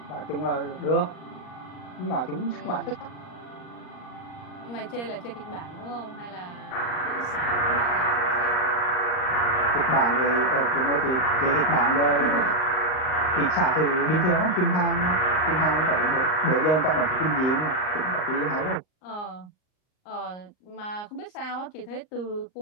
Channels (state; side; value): late; right; 38 ms